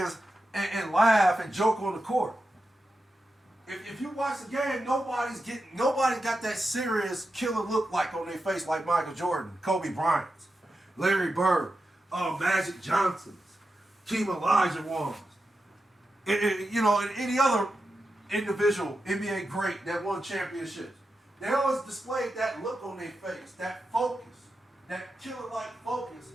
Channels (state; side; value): normal; both; correlation 0.90